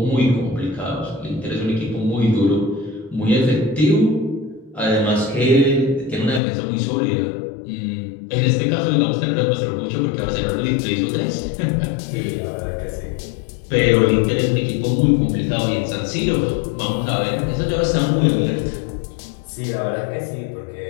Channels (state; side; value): drops out; right; at 6.4 s